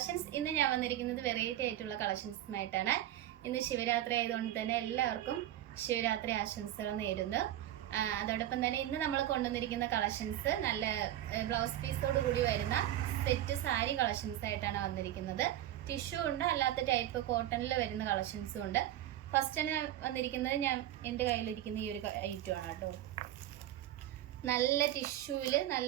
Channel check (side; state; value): left; quieter; 13.0 dB